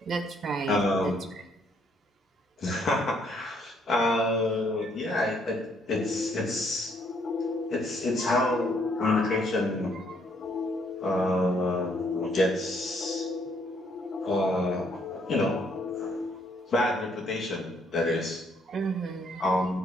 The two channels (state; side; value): normal; both; correlation 0.69